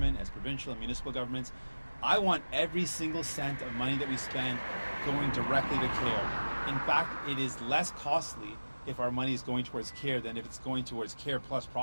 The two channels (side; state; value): both; inverted; correlation -1.00